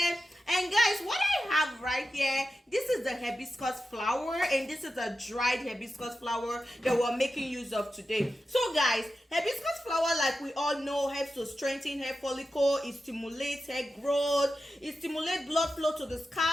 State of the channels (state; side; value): normal; both; correlation 0.91